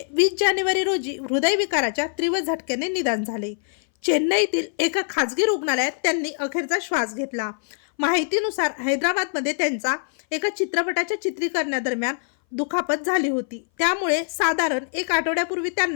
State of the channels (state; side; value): silent; right; 60 dB below the other